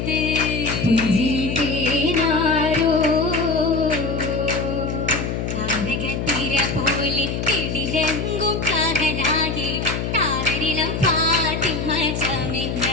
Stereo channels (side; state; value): left; noise; hum, 3 dB below the sound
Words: പുഞ്ചിതേനാരോ താരകത്തിര പോലെ കിടിലങ്കും കാഹനാകെ താരരിളം ഫാത്തിമ